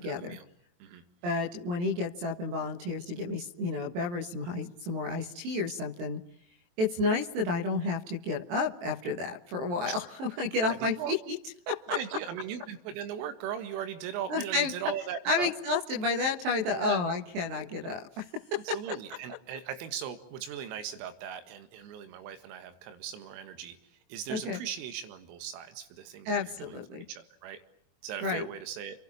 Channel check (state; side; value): late; left; 23 ms